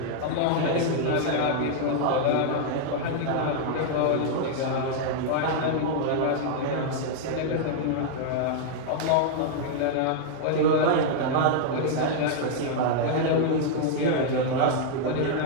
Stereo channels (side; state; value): both; different; correlation -0.01